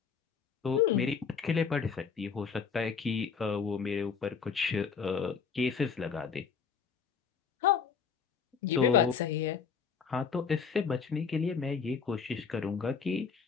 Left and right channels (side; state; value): right; quieter; 6.2 dB